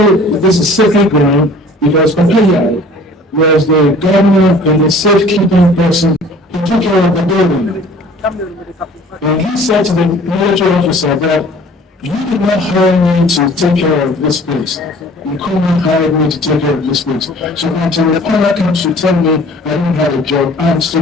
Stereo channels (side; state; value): both; normal; correlation 0.50